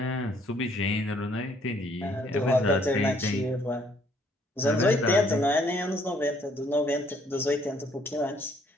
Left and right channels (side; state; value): both; normal; correlation 0.65